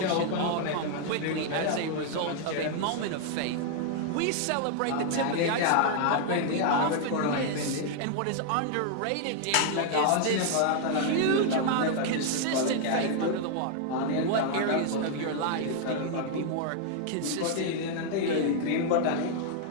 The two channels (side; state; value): both; different; correlation 0.00